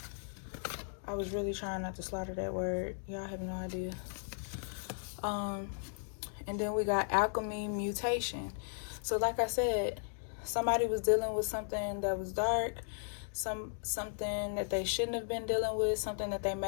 I was really trying not to slaughter that word. Y'all have no idea. And then we got alchemy mutation. So like I said, somebody was dealing with something that was dark, something that they shouldn't have been dealing with, something that they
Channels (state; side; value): silent; right; digital silence